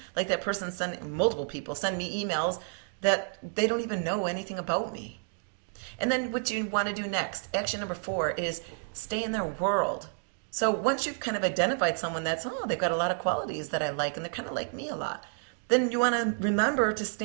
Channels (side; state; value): left; silent; 58 dB below the other